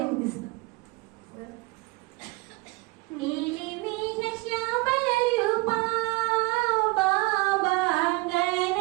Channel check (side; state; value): left; quieter; 23.7 dB